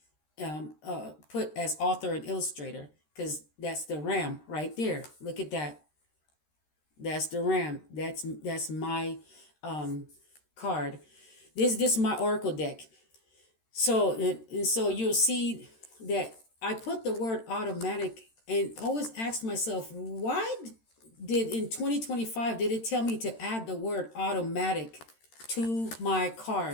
put as author and illustrator, because that's the ram right there. Look at that. That's the ram. That's my um, card. This is my oracle deck. So and so you'll see that I put the word automatic and always asked myself, why did in 2025 did it tell me to add the word automatic to my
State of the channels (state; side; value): late; right; 13 ms